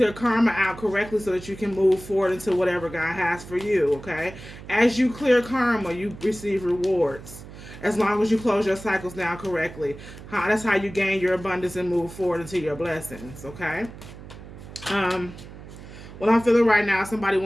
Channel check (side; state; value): right; noise; hum, 15 dB below the sound